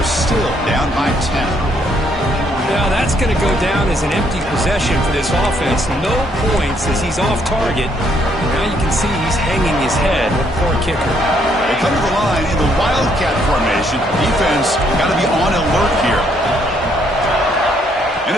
still down by 10. Now that's going to go down as an empty possession for this offense. No points as he's off target. Now you can see he's hanging his head. Poor kicker. They come to the line in the Wildcat formation. Defense got to be on alert here. And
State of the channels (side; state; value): both; normal; correlation 0.70